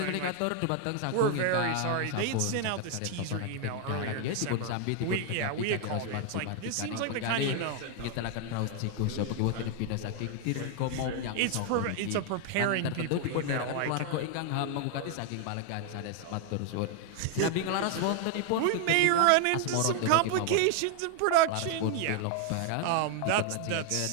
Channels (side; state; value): both; different; correlation 0.00